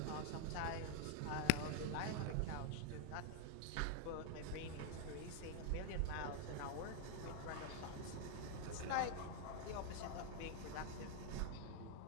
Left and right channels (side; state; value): both; different; correlation 0.01